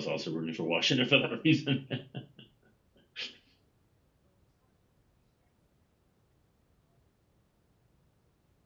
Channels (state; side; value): identical; both; correlation 1.00